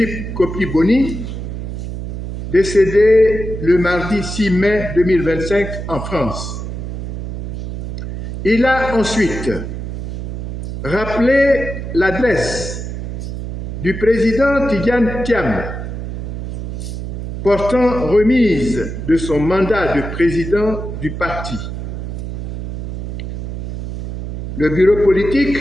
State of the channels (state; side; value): noise; right; hum, 6 dB below the sound